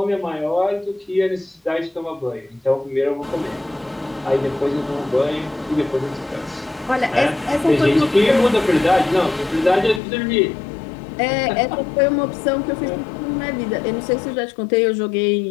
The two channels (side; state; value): right; drops out; at 10.0 s